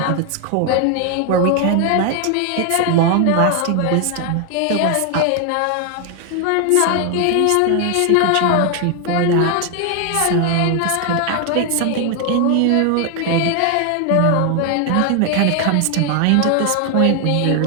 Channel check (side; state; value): both; different; correlation 0.01